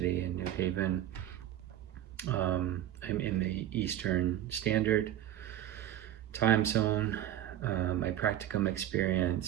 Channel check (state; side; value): quieter; left; 12.0 dB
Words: in New Haven. I'm in the Eastern Standard Time Zone. My practicum